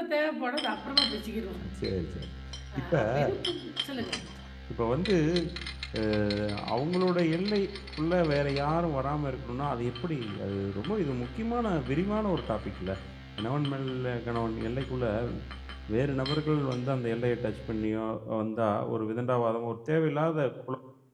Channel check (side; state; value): both; identical; correlation 1.00